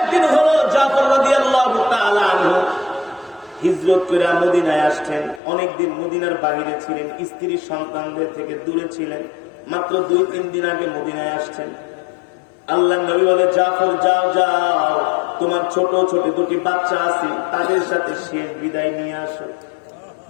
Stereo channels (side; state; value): right; drops out; at 5.4 s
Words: হলো জাফর রাদিয়াল্লাহু তাআলা আনহু হিজরত করে মদিনায় আসছেন। অনেকদিন মদিনার বাইরে ছিলেন, স্ত্রী সন্তানদের থেকে দূরে ছিলেন। মাত্র 2-3 দিন আগে মদিনায় আসছেন। আল্লাহর নবী বলে, জাফর যাও যাও, তোমার ছোট ছোট 2টি বাচ্চা আছে, তাদের সাথে শেষ বিদায় নিয়ে আসো।